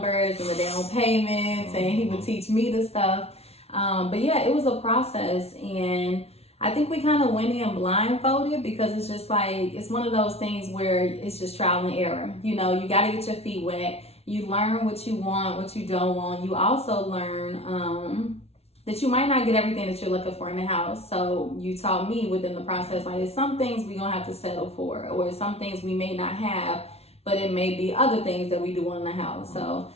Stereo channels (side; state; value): right; late; 0.30 ms